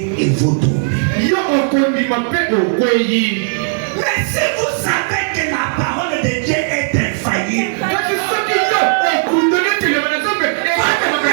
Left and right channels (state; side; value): silent; left; digital silence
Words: et vous tombez. Mais si vous savez que la parole de Dieu est infaillible,